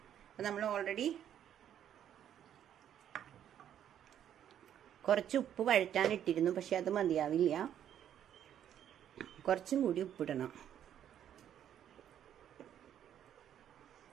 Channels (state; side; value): quieter; left; 10.1 dB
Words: അപ്പോൾ നമ്മൾ ഓൾറെഡി കുറച്ച് ഉപ്പ് വഴറ്റാനിട്ടിരുന്നു, പക്ഷെ അത് മതിയാവില്ല, കുറച്ചും കൂടി ഉപ്പിടണം.